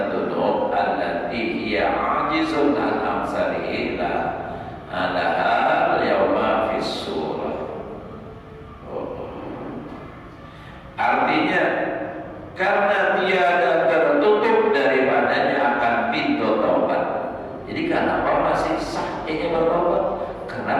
allati hiya 'ajizun an amsalihi laha al-yawma fi surah. Artinya karena tiada tertutup daripadanya akan pintu taubat. Jadi kenapa masih sah ini bertaubat?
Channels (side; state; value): both; identical; correlation 1.00